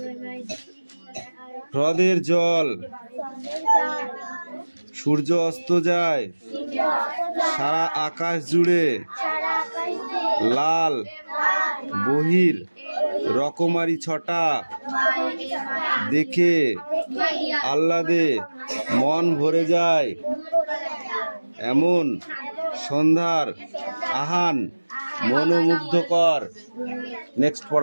হ্রদের জল সূর্য অস্ত যায়। সারা আকাশ জুড়ে লাল বহির রকমারি ছটা দেখে আহ্লাদে মন ভরে যায়। এমন সন্ধ্যার আহান মনোমুগ্ধকর। নেক্সট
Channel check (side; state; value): both; inverted; correlation -1.00